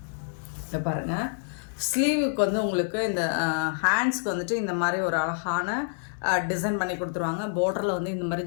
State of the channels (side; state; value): right; silent; digital silence